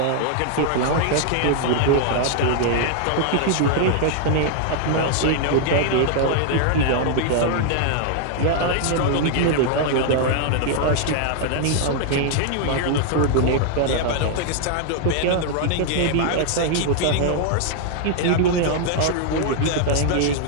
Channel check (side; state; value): both; different; correlation 0.00